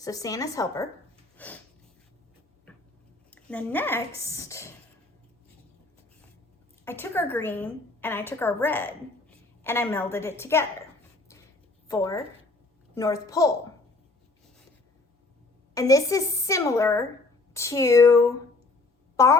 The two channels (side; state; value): right; quieter; 3.3 dB